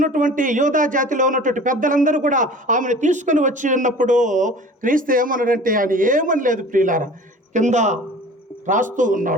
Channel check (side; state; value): both; normal; correlation 0.43